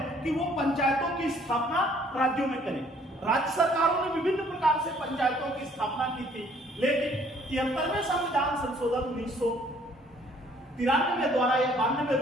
कि वो पंचायतों की स्थापना राज्यों में करें। राज्य सरकारों ने विभिन्न प्रकार से पंचायतों की स्थापना की थी, लेकिन 73वें संविधान संशोधन 1993 द्वारा या 92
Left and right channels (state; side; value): normal; both; correlation 0.60